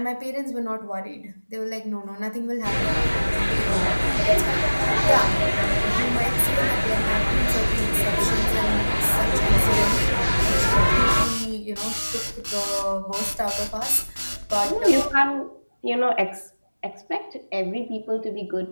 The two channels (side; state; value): both; inverted; correlation -1.00